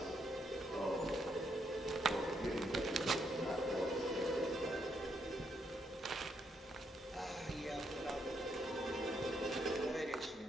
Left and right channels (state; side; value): normal; both; correlation 0.76